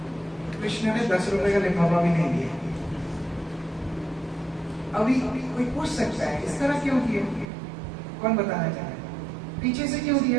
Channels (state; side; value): drops out; left; at 7.5 s